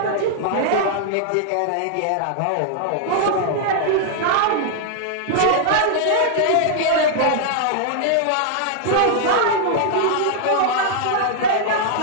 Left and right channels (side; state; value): both; different; correlation 0.00